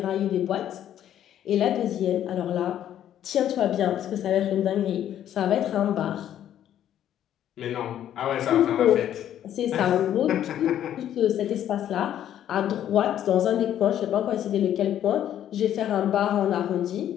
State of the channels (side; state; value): right; quieter; 10.9 dB